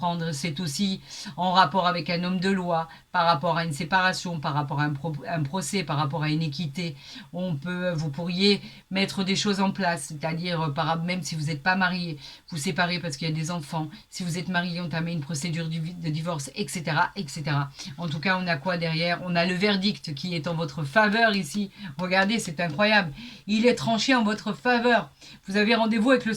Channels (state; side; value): identical; both; correlation 1.00